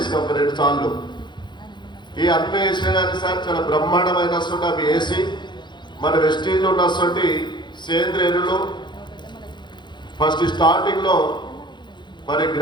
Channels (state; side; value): late; right; 0.22 ms